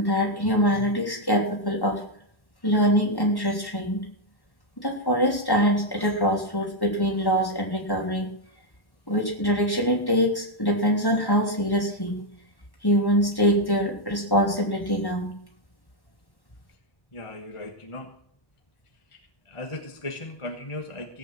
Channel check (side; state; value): right; late; 1.1 ms